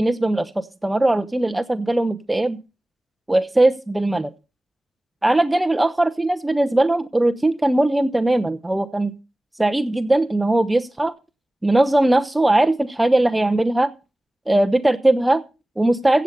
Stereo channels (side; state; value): both; normal; correlation 0.98